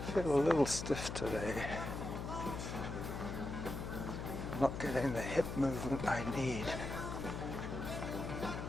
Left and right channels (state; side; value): noise; left; hum, 5 dB below the sound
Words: Feel a little stiff today. I'm not getting the hip movement I need